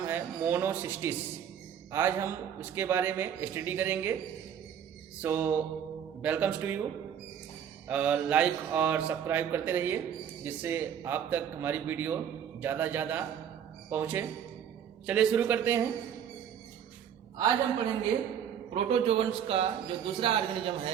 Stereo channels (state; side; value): quieter; left; 8.8 dB